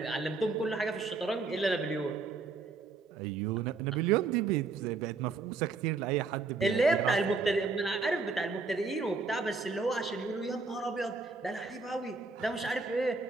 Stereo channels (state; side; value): quieter; left; 4.1 dB